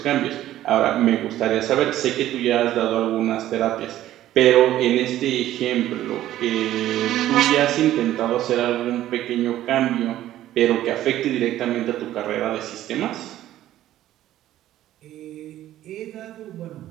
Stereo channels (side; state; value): left; quieter; 13.4 dB